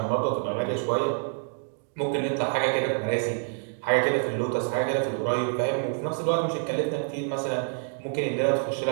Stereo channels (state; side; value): silent; left; 60 dB below the other